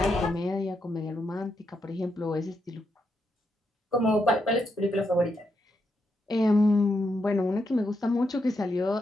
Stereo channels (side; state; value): both; normal; correlation 0.82